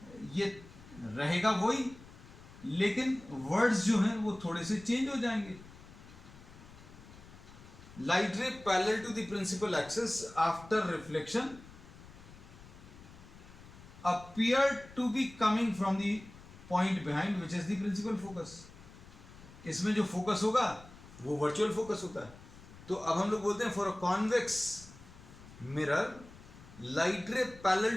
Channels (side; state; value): left; noise; rumble, 19 dB below the sound